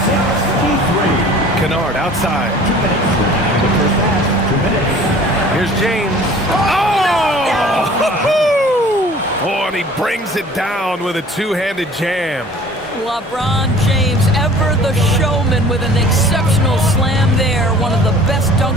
Kennard outside. Here's James. Oh, and he brings it down with a two-handed jam. LeBron James, ever the showman, with an exceptional slam there. One of the best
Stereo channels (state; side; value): normal; both; correlation 0.48